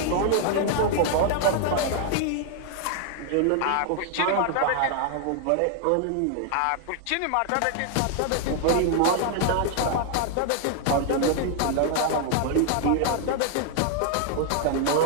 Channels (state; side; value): different; both; correlation 0.00